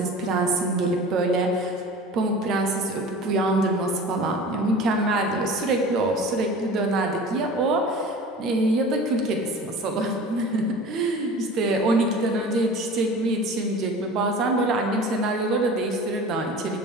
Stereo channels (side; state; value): both; normal; correlation 0.39